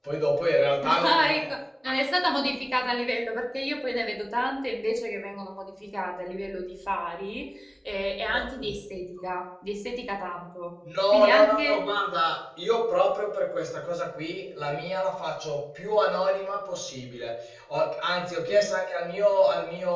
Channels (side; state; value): both; identical; correlation 1.00